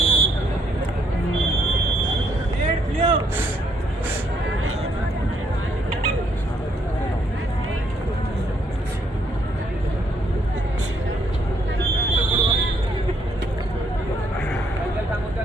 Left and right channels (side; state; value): both; normal; correlation 0.70